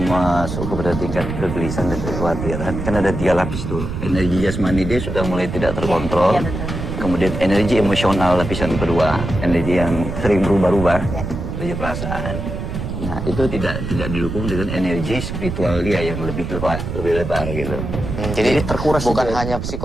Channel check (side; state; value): right; noise; rumble, 5 dB below the sound